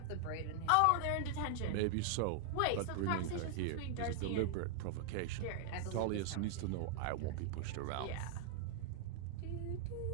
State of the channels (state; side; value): different; both; correlation 0.00